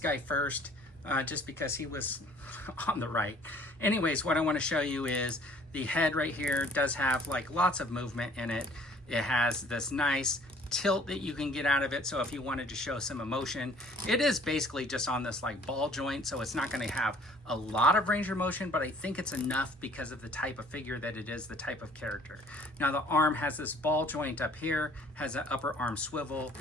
first, just because he was on the right. Anyways, what I want to show you is the head right here does have like lots of movement in it. It has this nice tilt that you can get out of it, so if you wanted to show some emotion, it is basically just on this like ball joint, so it's not going to have a lot of range of motion, but I think it's enough because of the type of figure that it is, the type of character. Now the arm has this ball joint up here, has an upper arm swivel,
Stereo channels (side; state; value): both; normal; correlation 0.55